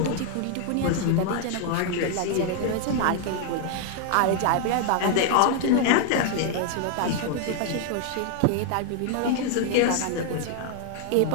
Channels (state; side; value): different; both; correlation 0.00